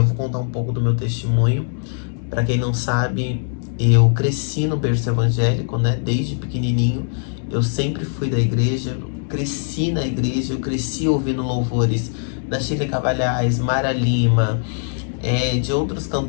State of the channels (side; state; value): right; silent; digital silence